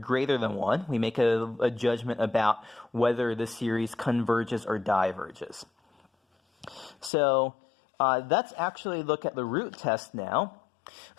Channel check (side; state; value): right; drops out; at 7.1 s